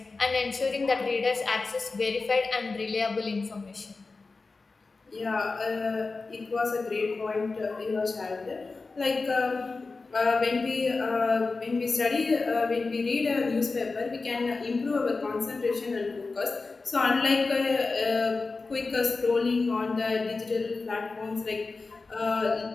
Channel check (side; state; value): right; quieter; 3.9 dB